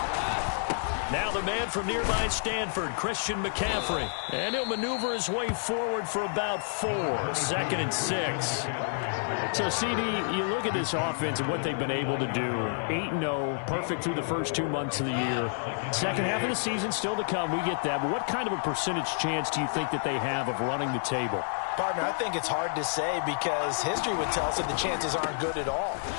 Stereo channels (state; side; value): silent; right; digital silence